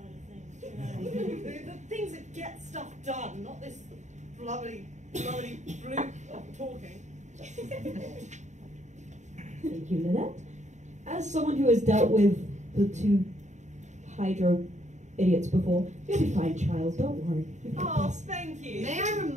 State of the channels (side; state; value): left; late; 0.34 ms